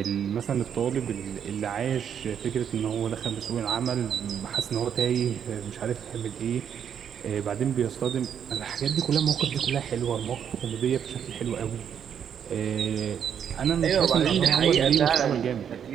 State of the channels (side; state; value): left; quieter; 8.3 dB